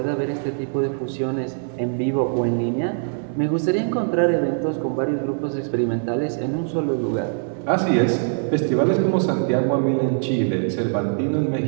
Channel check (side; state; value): left; silent; digital silence